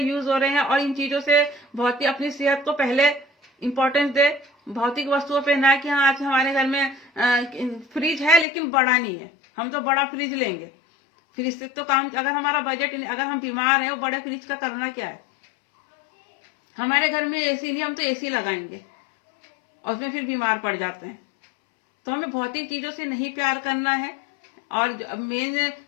यूज हो रहे हैं और इन चीजों से बहुत ही अपनी सेहत को पहले इंपॉर्टेंस दे, भौतिक वस्तुओं पे ना कि हाँ आज हमारे घर में फ्रिज है लेकिन बड़ा नहीं है, हम तो बड़ा फ्रिज लेंगे। फ्रिज से तो काम, अगर हमारा बजट, अगर हम बीमार हैं, वो बड़े फ्रिज का करना क्या है। हमारे घर में एसी नहीं, हम तो एसी लगाएंगे और उसमें फिर बीमार पड़ जाते हैं। तो हमें भौतिक चीजों से नहीं प्यार करना है और मेन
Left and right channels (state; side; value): drops out; right; at 8.5 s